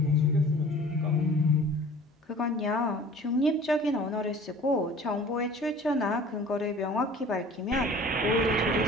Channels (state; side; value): normal; both; correlation 0.46